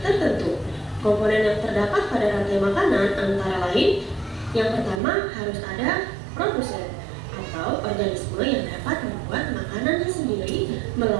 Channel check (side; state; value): left; drops out; at 5.0 s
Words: tertentu. Komponen yang terdapat pada rantai makanan antara lain, yang pertama harus ada produsen atau organisme yang dapat membuat makanannya sendiri